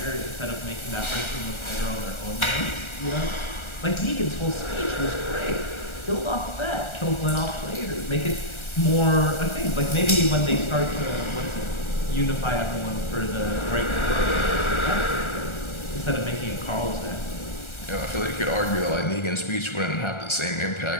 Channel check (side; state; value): right; late; 1.3 ms